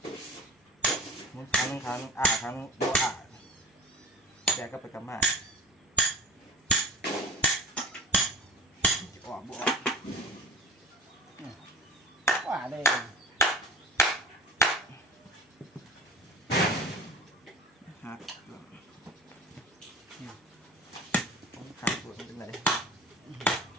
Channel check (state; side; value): normal; both; correlation 0.34